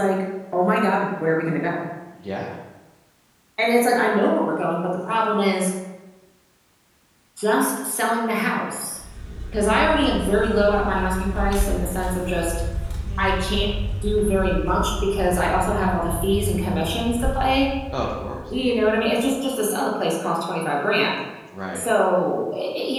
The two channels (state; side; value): identical; both; correlation 1.00